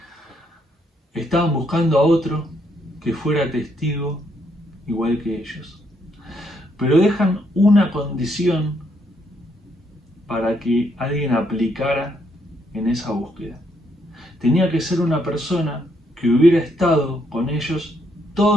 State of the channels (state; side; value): normal; both; correlation 0.73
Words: Estaban buscando a otro que fuera testigo igual que ellos, pero dejan una condición para que alguien aplicara en esa búsqueda. Tenía que ser una persona que hubiera estado con ellos